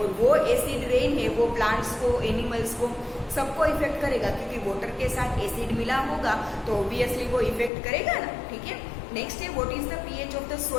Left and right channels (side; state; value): right; drops out; at 7.7 s